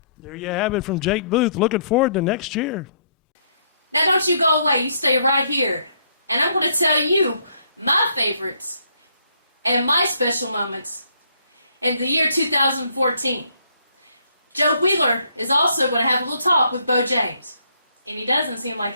There you have it from Jake Booth. Looking forward to next year. Now don't you go away, you stay right here. And I'm going to tell you my favorites and my special moments in the year 2014. Joe Wheeler is also going to have a little talk with Bo James. And he doesn't seem like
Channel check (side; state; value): both; inverted; correlation -0.68